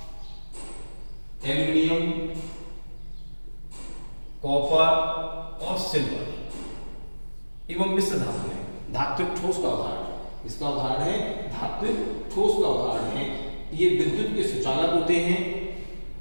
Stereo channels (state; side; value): inverted; both; correlation -1.00